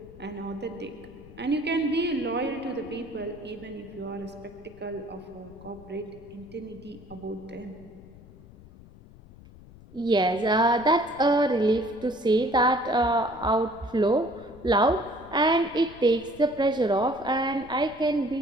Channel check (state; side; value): noise; left; rumble, 21 dB below the sound